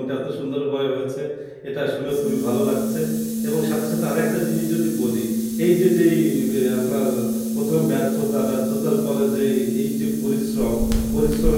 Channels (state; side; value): identical; both; correlation 1.00